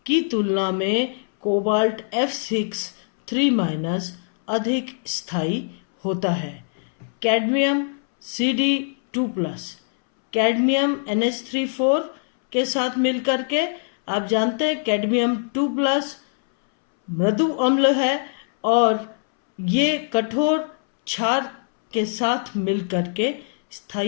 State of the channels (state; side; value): silent; right; 64 dB below the other